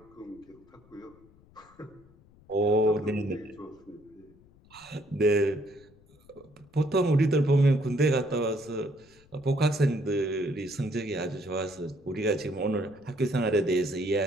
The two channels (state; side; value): noise; left; rumble, 28 dB below the sound